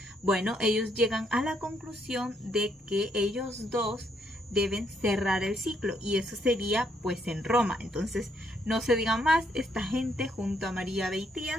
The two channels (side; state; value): both; normal; correlation 0.73